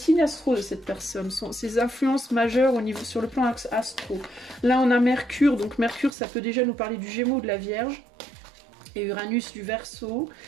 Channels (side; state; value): left; drops out; at 6.2 s